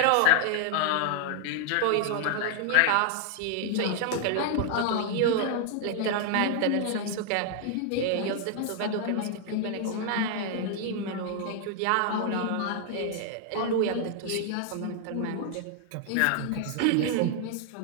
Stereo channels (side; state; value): both; different; correlation 0.00